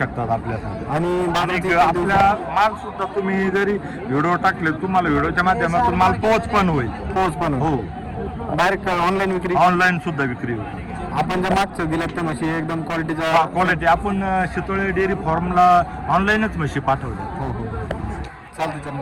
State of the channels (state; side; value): identical; both; correlation 1.00